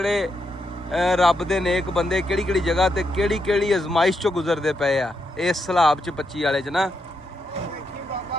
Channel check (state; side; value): normal; both; correlation 0.82